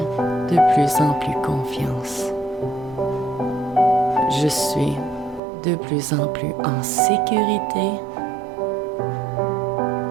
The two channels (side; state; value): left; drops out; at 5.4 s